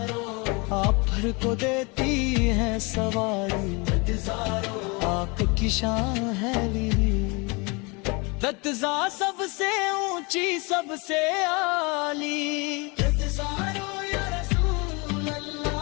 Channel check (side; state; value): right; quieter; 28.7 dB